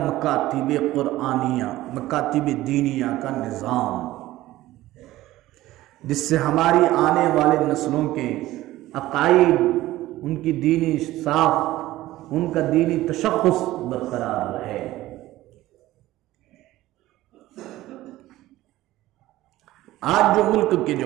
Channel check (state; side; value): quieter; left; 16.2 dB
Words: قرآنیہ، مکاتب دینیہ کا نظام، جس سے ہماری آنے والے نسلوں کے عقائد، ان کی دینی ساخت، ان کا دینی تشخص برقرار رہے۔ آج جو ملک کے